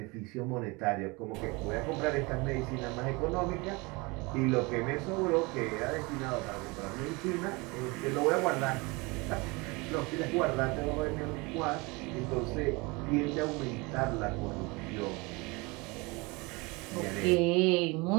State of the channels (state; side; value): quieter; left; 26.0 dB